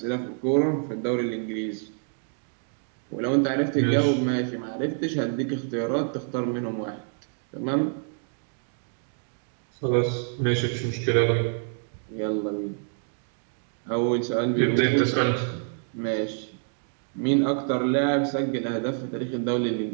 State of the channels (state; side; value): silent; left; 60 dB below the other